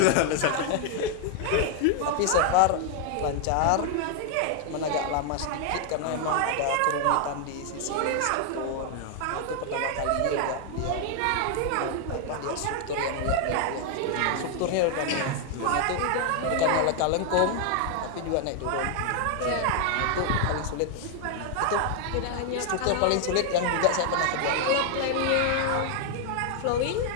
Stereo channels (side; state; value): both; different; correlation 0.00